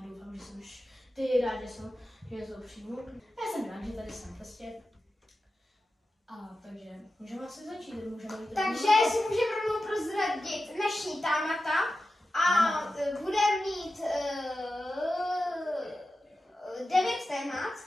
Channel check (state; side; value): normal; both; correlation 0.92